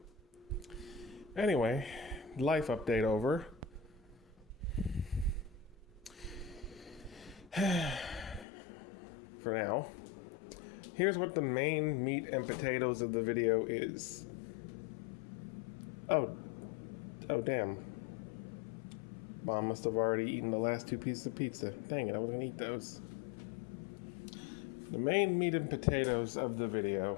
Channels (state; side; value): drops out; right; at 8.5 s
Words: Anyway, life update over. For now, here's what the main meat and potatoes of the video is. Oh damn. Mom must have already eaten the last 2 pieces of pizza. Dang it, I was gonna eat those. The main meat and potatoes of the video